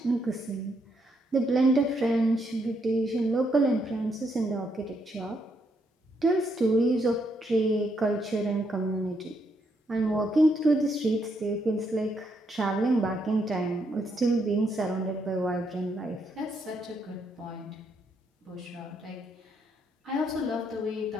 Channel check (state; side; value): normal; both; correlation 0.76